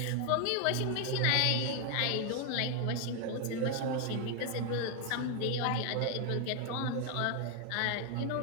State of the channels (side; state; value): both; different; correlation 0.01